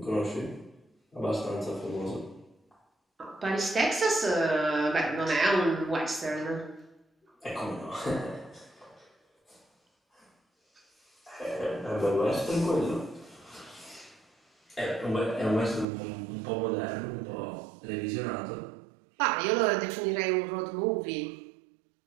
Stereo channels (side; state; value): left; drops out; at 15.9 s